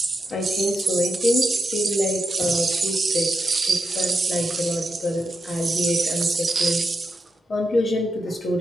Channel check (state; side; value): normal; both; correlation 0.86